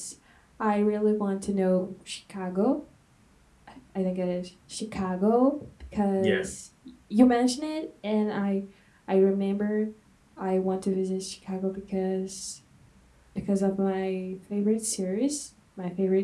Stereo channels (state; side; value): identical; both; correlation 1.00